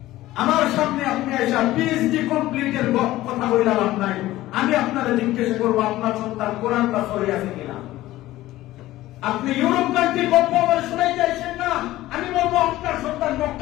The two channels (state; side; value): quieter; right; 16.2 dB